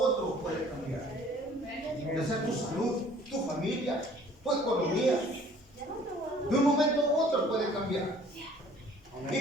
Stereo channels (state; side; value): normal; both; correlation 0.54